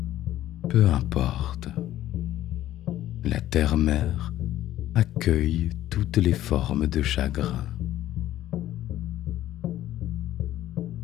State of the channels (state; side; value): quieter; right; 13.5 dB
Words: Peu importe, la terre-mère accueille toutes les formes de chagrin.